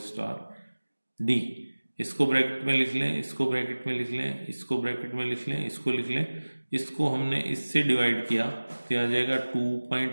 star d। इसको ब्रैकेट में लिख लें, इसको ब्रैकेट में लिख लें, इसको ब्रैकेट में लिख लें, इसको लिख लें। इसको हमने इससे डिवाइड किया तो आ जाएगा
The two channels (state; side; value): inverted; both; correlation -1.00